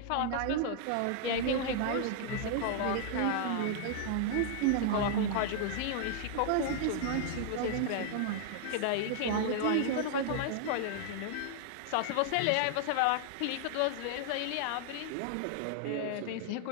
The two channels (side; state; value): both; different; correlation -0.01